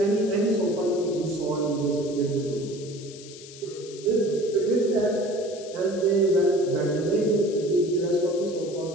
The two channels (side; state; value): left; noise; hiss, 17 dB below the sound